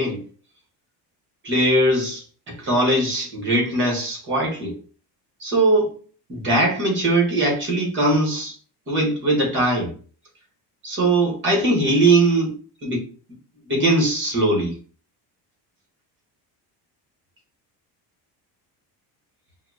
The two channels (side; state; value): both; normal; correlation 0.20